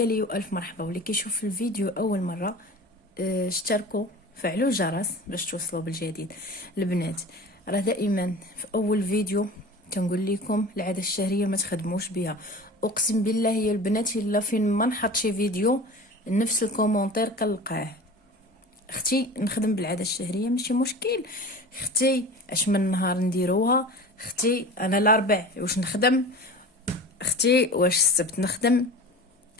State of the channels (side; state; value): both; normal; correlation 0.37